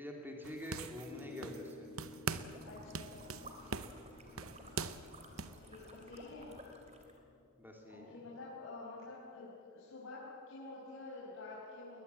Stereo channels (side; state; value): both; normal; correlation 0.23